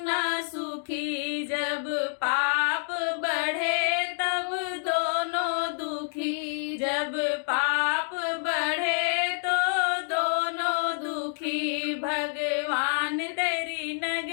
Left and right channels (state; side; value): silent; right; digital silence